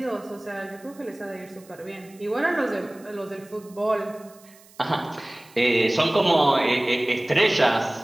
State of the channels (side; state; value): right; noise; hiss, 26 dB below the sound